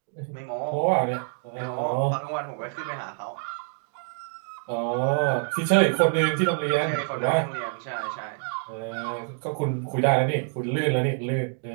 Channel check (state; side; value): silent; left; 60 dB below the other